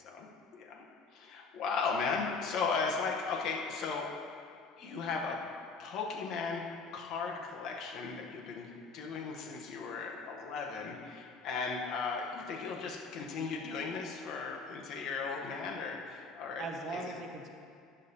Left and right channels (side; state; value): right; quieter; 4.3 dB